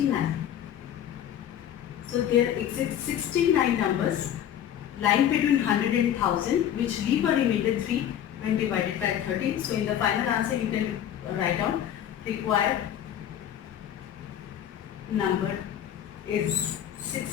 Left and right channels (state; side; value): quieter; right; 10.4 dB